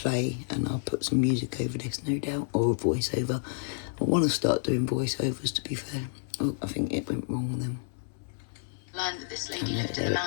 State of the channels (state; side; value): silent; right; 58 dB below the other